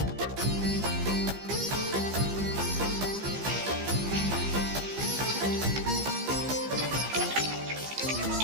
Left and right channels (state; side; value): late; left; 15 ms